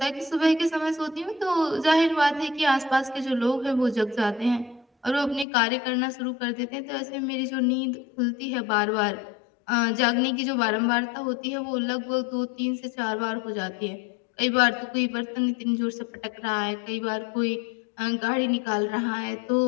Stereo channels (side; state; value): right; drops out; at 5.5 s